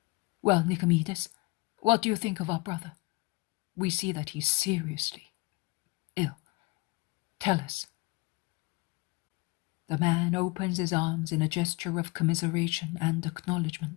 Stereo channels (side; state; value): right; quieter; 24.6 dB